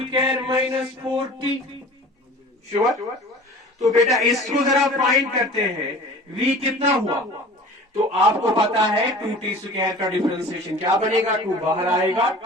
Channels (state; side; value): normal; both; correlation 0.42